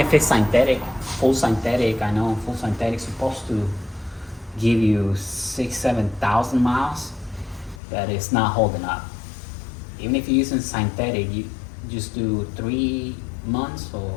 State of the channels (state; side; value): drops out; right; at 7.8 s